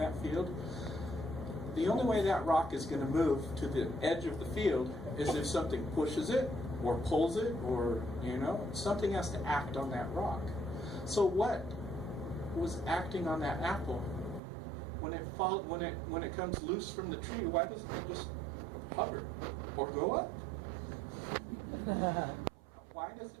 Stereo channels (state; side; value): drops out; left; at 14.4 s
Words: field, the only way that rock is going to move to the edge of the field is if something pushes it, or pulls it, or something has to act on that rock. So what was acting on that apple when it comes loose from the tree? Why doesn't it just hover or go up? Why